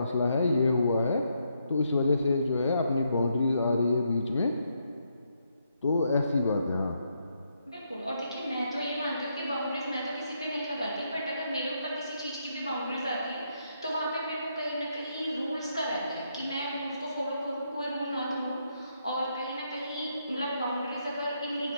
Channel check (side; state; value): both; inverted; correlation -0.77